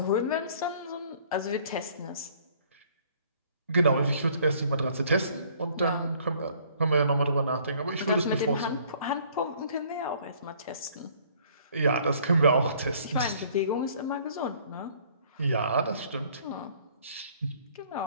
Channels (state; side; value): inverted; both; correlation -0.58